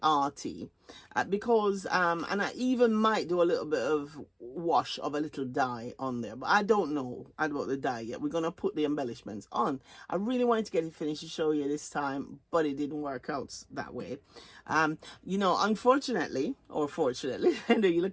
arty, because and I even might do a little bit of wash of a little dye on there, but I don't know about the dye yet. We're gonna put the embellishments on. I really wanted to get it finished to show you this time, but it didn't work out that way. You know, unfortunately or fortunately, I know you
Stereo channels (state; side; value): identical; both; correlation 1.00